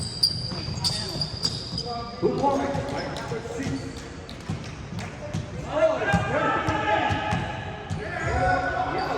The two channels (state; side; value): identical; both; correlation 1.00